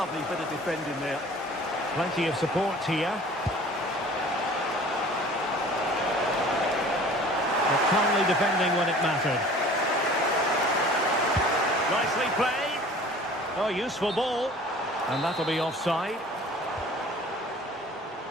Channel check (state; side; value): normal; both; correlation 0.47